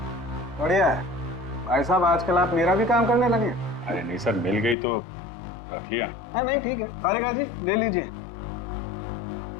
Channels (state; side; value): drops out; right; at 4.8 s